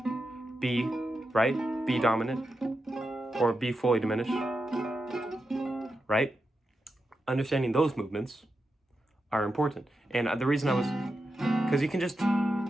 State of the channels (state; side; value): normal; both; correlation 0.88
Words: B, right? B dominant, or B fully diminished, right? Understanding those movements are important. And the reason I was, because you can just